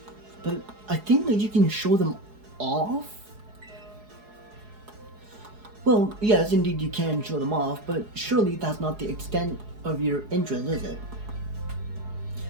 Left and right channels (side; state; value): left; late; 4.7 ms